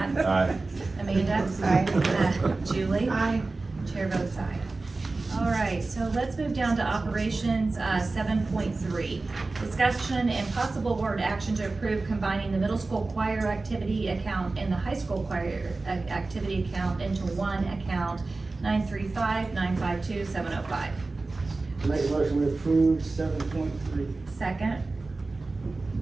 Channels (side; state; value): left; quieter; 3.5 dB